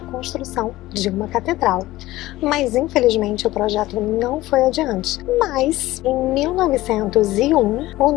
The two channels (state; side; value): quieter; right; 17.1 dB